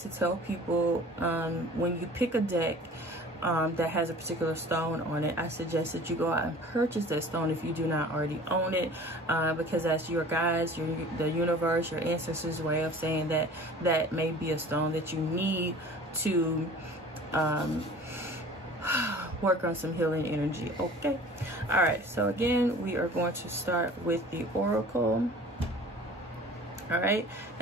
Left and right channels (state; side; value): normal; both; correlation 0.44